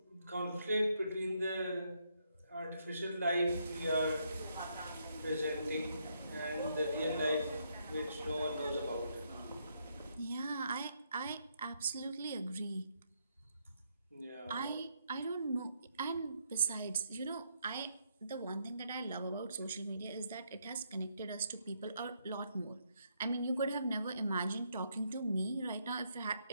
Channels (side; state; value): both; inverted; correlation -0.75